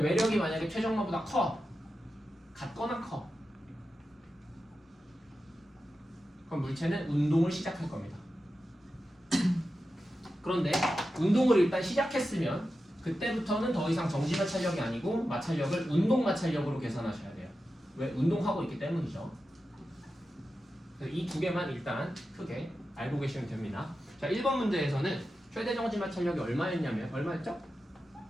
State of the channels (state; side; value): normal; both; correlation 0.91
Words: 외력이 만약에 최정마보다 커, 같거나 커, 그럼 물체는 운동을 시작할 겁니다. 그런데 운동을 일단 시작했으면 그때부터는 더 이상 정지 마찰력이 아니고 마찰력을 운동 마찰력으로 계산하셔야 돼요. 왜? 운동하고 있기 때문이죠. 이 두 개만 일단 크게 알고 계시면 됩니다. 자, 1번 문제에서는 최대 정지 마찰력이 얼마였냐면 얼마였죠?